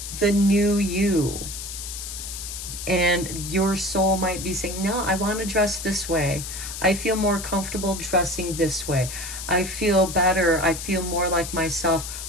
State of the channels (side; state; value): left; noise; hiss, 8 dB below the sound